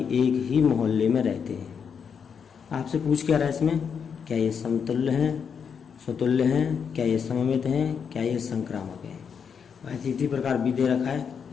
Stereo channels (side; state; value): right; quieter; 6.8 dB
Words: एक ही मोहल्ले में रहते हैं। आपसे पूछ क्या रहा है इसमें, क्या ये समतुल्य हैं, स्वतुल्य हैं, क्या ये सममित हैं, क्या ये संक्रामक हैं। वैसे इसी प्रकार बी दे रखा है,